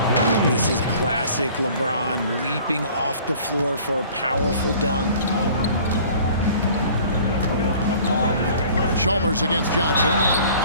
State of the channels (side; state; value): both; inverted; correlation -0.50